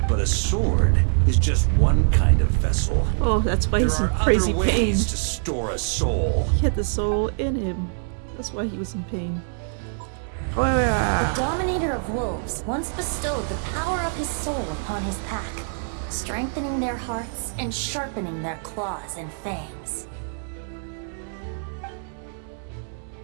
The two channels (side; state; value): left; silent; digital silence